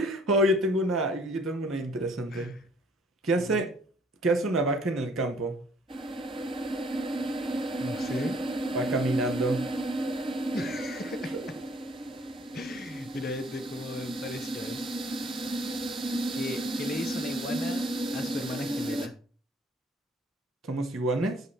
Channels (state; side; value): normal; both; correlation 0.60